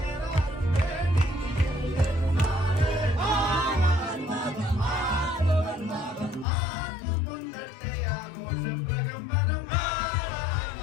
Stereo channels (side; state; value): right; drops out; at 6.5 s